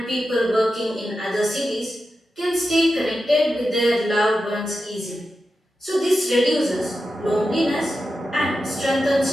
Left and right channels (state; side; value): normal; both; correlation 0.90